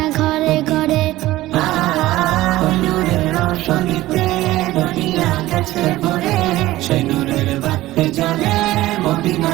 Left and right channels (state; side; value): quieter; left; 16.7 dB